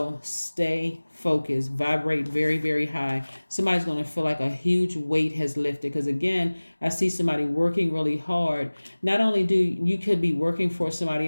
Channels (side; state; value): both; inverted; correlation -1.00